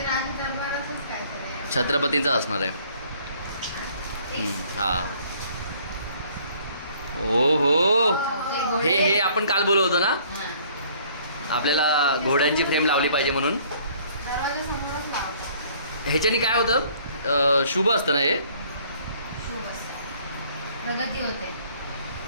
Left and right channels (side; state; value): both; inverted; correlation -0.58